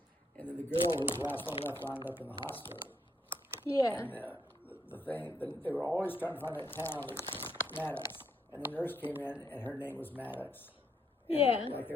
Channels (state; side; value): normal; both; correlation 0.75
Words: And then the girl who was the last one left wound up in the hospital. Yeah. And they were always trying to find that town, Maddox. And the nurse came in, and her name was Maddox. And Yeah. like they